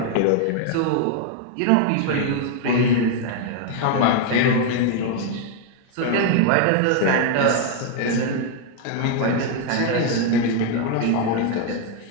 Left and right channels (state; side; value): different; both; correlation 0.00